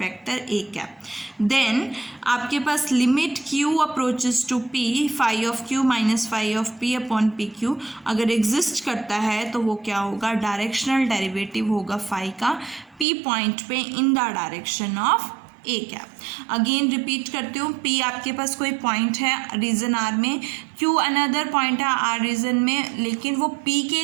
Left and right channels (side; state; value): left; drops out; at 13.1 s